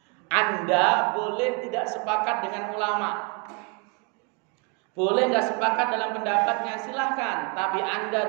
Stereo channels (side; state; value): left; quieter; 32.8 dB